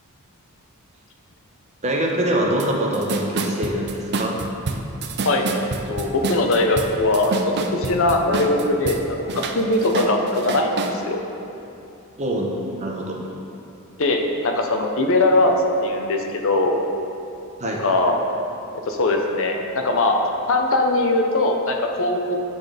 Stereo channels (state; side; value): normal; both; correlation -0.08